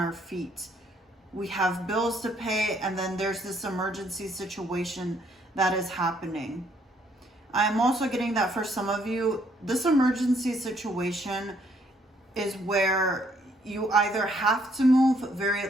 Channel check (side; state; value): both; normal; correlation 0.68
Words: feet? We have bills to pay, and then there's this emergency situation that is happening. I'm also getting that for some of you, this emergency situation is where you either have to move